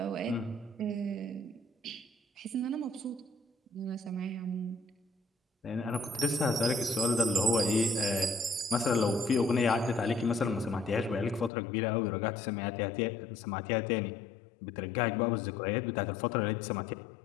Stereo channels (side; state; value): right; drops out; at 11.5 s